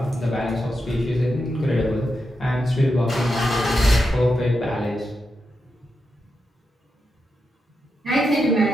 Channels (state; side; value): normal; both; correlation 0.86